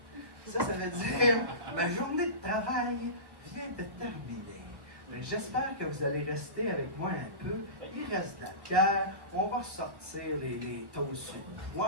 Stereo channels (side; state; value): left; late; 1.1 ms